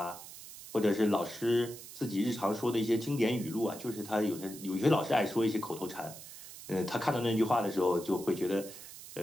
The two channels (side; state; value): right; noise; hiss, 14 dB below the sound